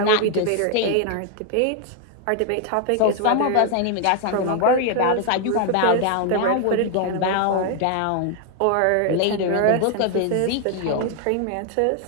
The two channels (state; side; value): different; both; correlation 0.00